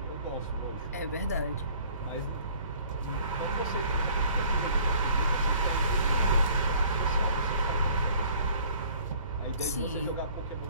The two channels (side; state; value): both; inverted; correlation -0.54